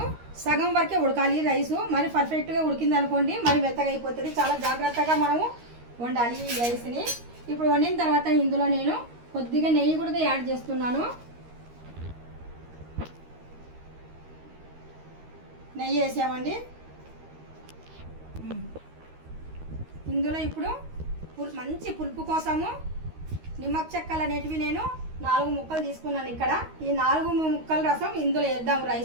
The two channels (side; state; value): left; late; 13 ms